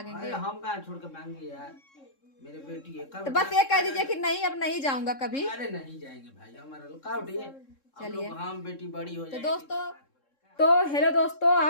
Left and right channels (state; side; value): late; right; 3.7 ms